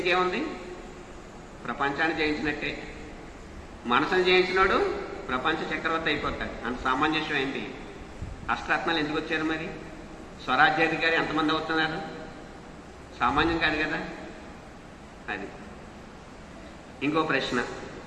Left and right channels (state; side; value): identical; both; correlation 1.00